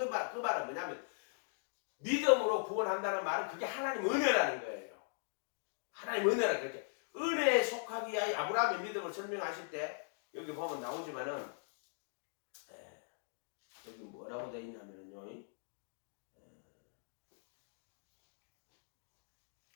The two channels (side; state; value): right; silent; digital silence